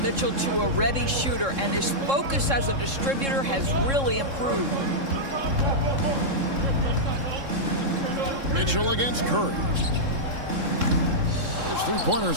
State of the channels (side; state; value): left; late; 3.7 ms